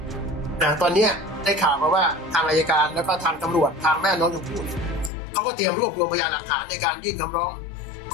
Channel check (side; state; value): right; drops out; at 5.1 s